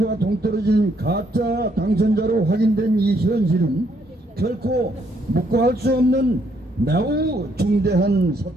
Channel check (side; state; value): both; normal; correlation 0.71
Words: 동떨어진 가짜 당선자로 확인된 이 현실은 결코 묵과할 수 없는 매우 중대한